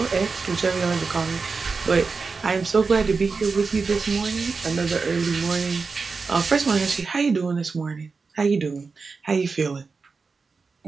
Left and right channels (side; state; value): left; quieter; 4.6 dB